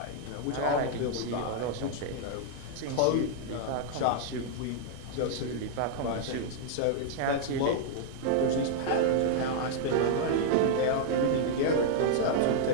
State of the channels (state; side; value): different; both; correlation -0.01